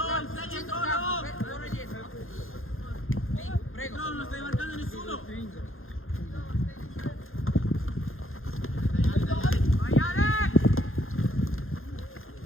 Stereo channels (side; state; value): right; late; 0.60 ms